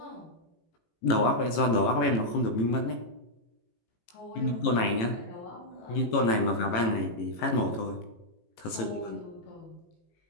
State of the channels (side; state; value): right; late; 18 ms